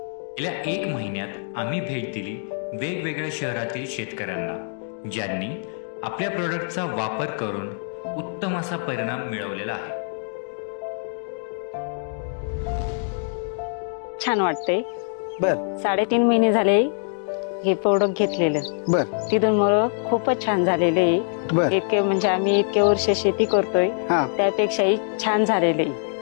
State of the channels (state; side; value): silent; right; 63 dB below the other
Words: गेल्या 1 महिन्यात आम्ही भेट दिली वेगवेगळ्या शहरातील शेतकऱ्यांना, ज्यांनी आपल्या प्रोडक्टचा वापर करून उत्तम असा परिणाम मिळवलेला आहे। छान वाटते। बर 3.5 महिने झाले हे प्रोडक्ट घेतलेलं। बर तिथून मला खूपच छान झालेले आहे। बर इतके म्हणजे आम्ही इतके वर्ष शेती करतोय हा त्यापेक्षाही छान झालेले